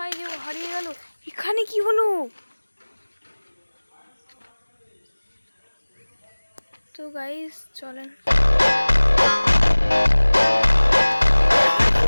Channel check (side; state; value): both; inverted; correlation -1.00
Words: যে হারিয়ে গেল, এখানে কি হলো? তো গাইজ চলেন,